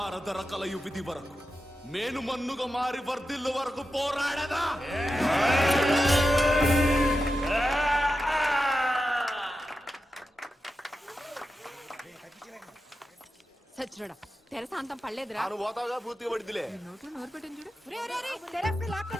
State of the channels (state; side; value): normal; both; correlation 0.90